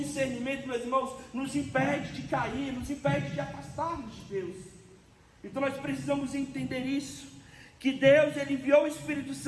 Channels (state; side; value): identical; both; correlation 1.00